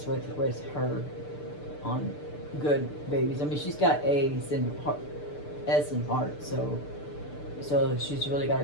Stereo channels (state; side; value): late; right; 6.7 ms